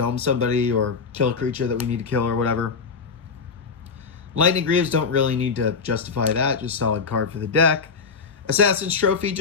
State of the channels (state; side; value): quieter; right; 5.2 dB